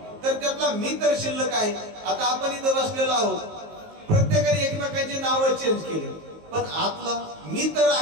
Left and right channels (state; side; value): late; left; 19 ms